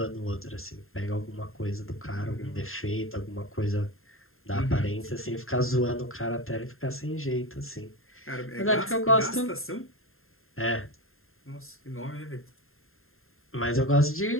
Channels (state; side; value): late; right; 0.61 ms